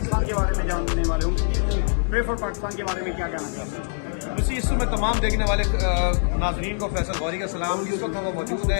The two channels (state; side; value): silent; right; 63 dB below the other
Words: के बारे में जानने वाले होंगे। प्रे फॉर पाकिस्तान के बारे में क्या कहना चाहते हैं? उसी इस में तमाम देखने वाले नाजरीन को फैसल गौरी का सलाम। इस वक्त हम मौजूद